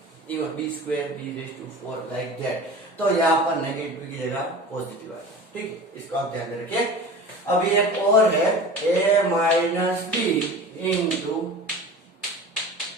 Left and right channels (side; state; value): both; normal; correlation 0.37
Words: B square B raise to 4 like that, तो यहाँ पर नेगेटिव की जगह पॉजिटिव आता है, ठीक है। इसको आप ध्यान में रखिए। अब ये और है a minus B into